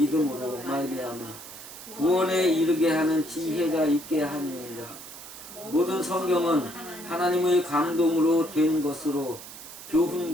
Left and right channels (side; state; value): right; noise; hiss, 14 dB below the sound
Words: 말미암아 구원에 이르게 하는 지혜가 있게 하느니라. 모든 성경은 하나님의 감동으로 된 것으로